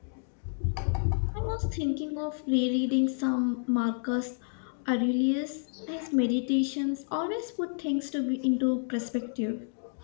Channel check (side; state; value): right; silent; digital silence